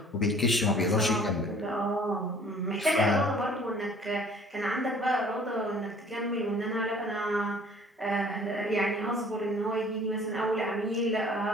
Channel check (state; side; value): normal; both; correlation 0.53